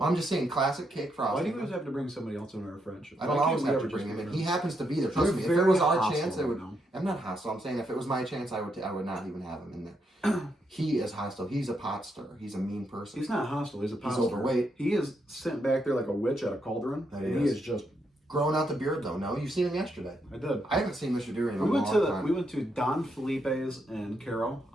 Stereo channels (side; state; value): both; normal; correlation 0.79